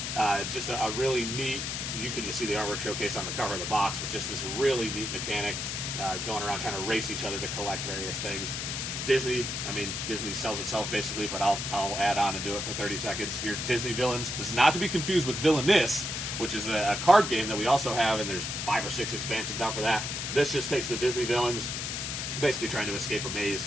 just a really neat. You can just see the artwork showcased on the cover of the box, but just this really neat mechanic going around trying to race each other to collect various things. Disney sells itself basically, but I'll add on and do it for 30 seconds. Your Disney villains. This is not to be confused with Villainous, which is a card game that we also have, and there's 5 or 6 expansions out for that. This just takes the Disney villains, basically trying to escape a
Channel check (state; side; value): noise; left; hiss, 3 dB below the sound